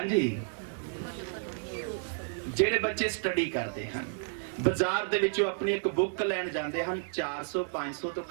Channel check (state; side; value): silent; left; digital silence